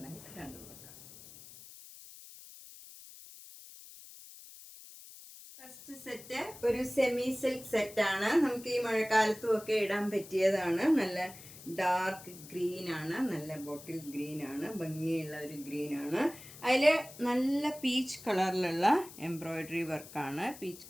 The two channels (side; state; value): left; noise; hiss, 17 dB below the sound